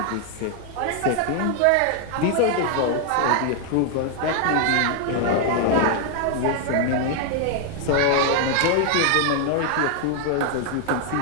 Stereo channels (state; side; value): different; both; correlation 0.00